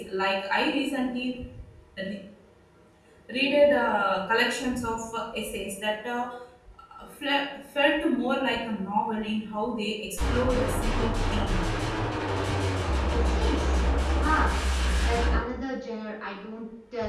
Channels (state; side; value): identical; both; correlation 1.00